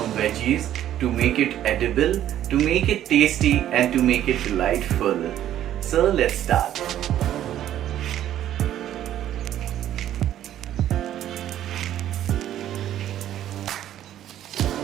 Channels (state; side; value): quieter; left; 11.8 dB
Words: veggies to make it edible, to make it tasty and to make it delightful. So let's start.